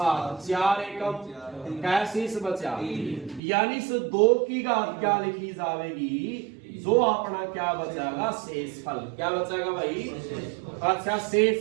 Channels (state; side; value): drops out; left; at 3.4 s